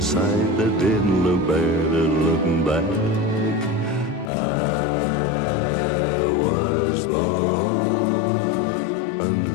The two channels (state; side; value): drops out; right; at 4.3 s